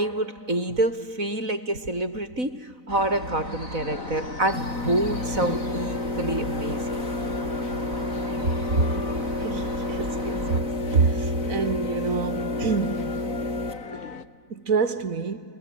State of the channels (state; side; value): late; left; 4.0 ms